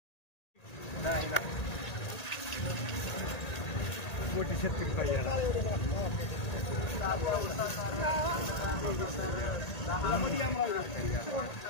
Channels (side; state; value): right; late; 1.8 ms